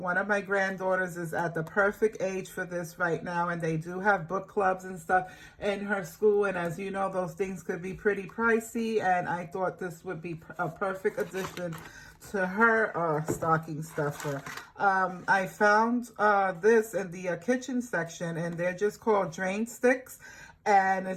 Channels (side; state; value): both; identical; correlation 1.00